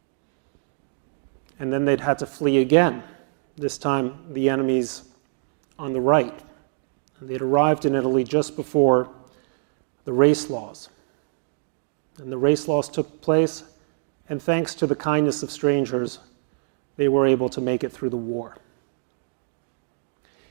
And then they'd had to flee again, this time the enemies on the right. And they'd arrived in Italy just before the race laws. And the race laws took place, and thanks to the kindness of strangers, they were able to make it through the war.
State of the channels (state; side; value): silent; left; digital silence